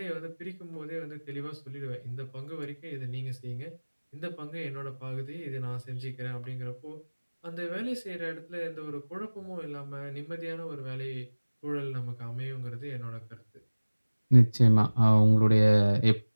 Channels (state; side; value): inverted; both; correlation -1.00